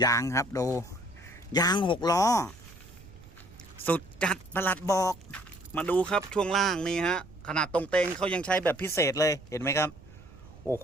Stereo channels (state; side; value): noise; right; rumble, 21 dB below the sound